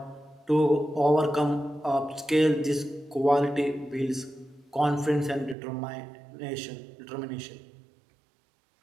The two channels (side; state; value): left; drops out; at 5.6 s